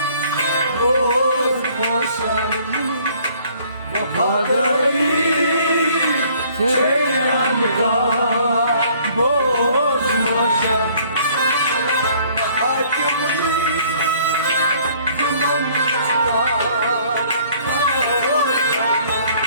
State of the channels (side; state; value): both; inverted; correlation -0.58